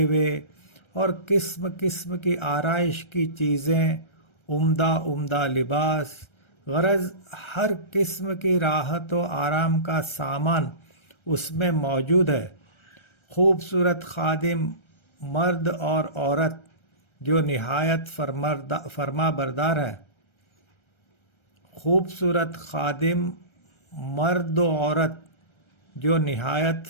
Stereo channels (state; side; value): late; right; 1.3 ms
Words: اور قسم قسم کی آرائش کی چیزیں، عمدہ عمدہ لباس، غرض ہر قسم کی راحت و آرام کا سامان اس میں موجود ہے. خوبصورت خادم مرد اور عورت جو نہایت فرما بردار ہیں. خوبصورت خادم مرد و عورت جو نہایت